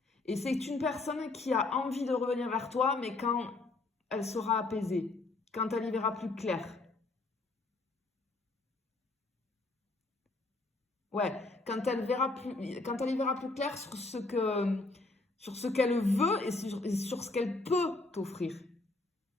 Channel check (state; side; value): quieter; right; 3.2 dB